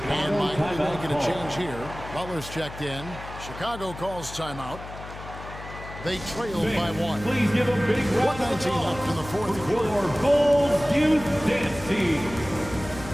Miami making a change here. Butler's checked in. Chicago calls timeout. They trail by 1. Please give a big round of 1:19 left in the fourth for quarter. your Bulls Youth Dance Team.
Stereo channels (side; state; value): left; noise; hum, 13 dB below the sound